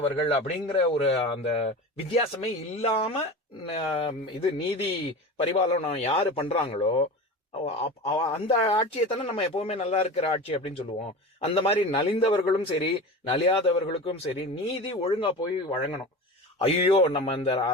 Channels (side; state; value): both; normal; correlation 0.31